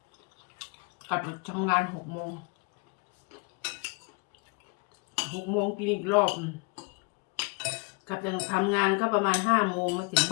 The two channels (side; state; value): right; quieter; 30.3 dB